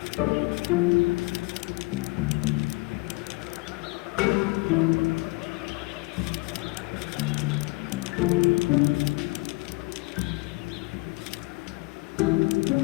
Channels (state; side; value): quieter; right; 25.7 dB